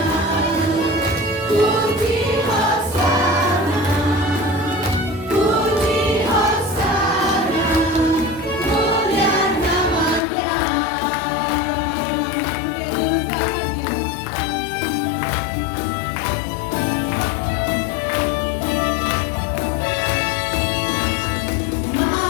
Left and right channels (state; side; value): drops out; right; at 10.2 s